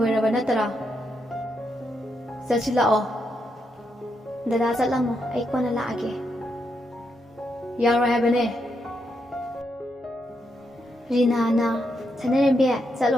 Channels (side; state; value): both; normal; correlation 0.81